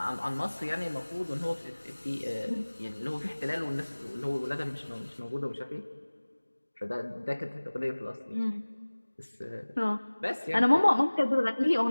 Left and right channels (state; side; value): inverted; both; correlation -1.00